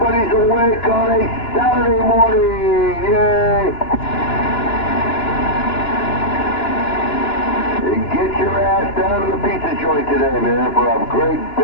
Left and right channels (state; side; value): late; right; 2.9 ms